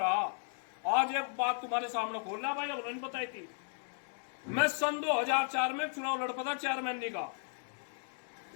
आज एक बात तुम्हारे सामने खोल रहा भाई, अब नहीं बताई थी। मैं सन 2004 में चुनाव लड़ पड़ा चेयरमैन का,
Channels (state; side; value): silent; right; 54 dB below the other